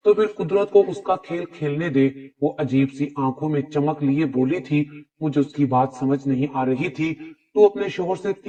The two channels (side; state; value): both; identical; correlation 1.00